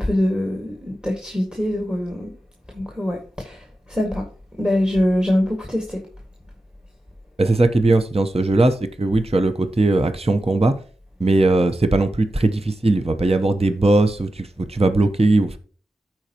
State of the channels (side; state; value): both; normal; correlation 0.91